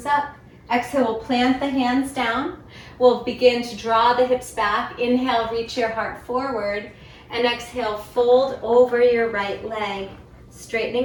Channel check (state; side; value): identical; both; correlation 1.00